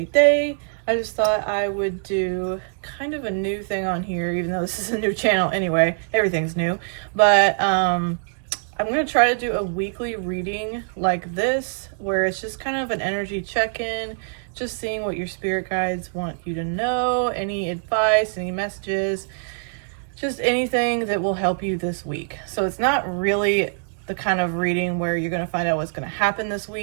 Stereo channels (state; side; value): silent; left; digital silence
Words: day. I just thought I would do kind of a new thing on here, even though this is a new channel anyway. Everything's new. But I'm going to try to do a weekly reading like this, where it's just kind of an energy check-in, just seeing what your spirit guides want you to know, any advice, any messages, just anything that will help you this week. So it's not really the kind of reading where you're going to find out what's going to happen this